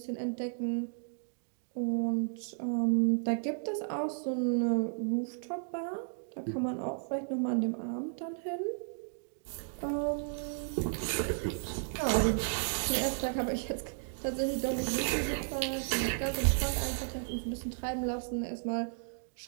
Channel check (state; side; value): silent; left; digital silence